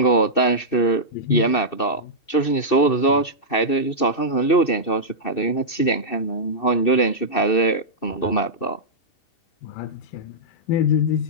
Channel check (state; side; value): late; right; 2.6 ms